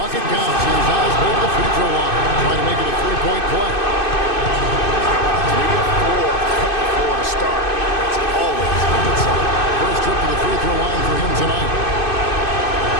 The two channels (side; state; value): right; late; 2.6 ms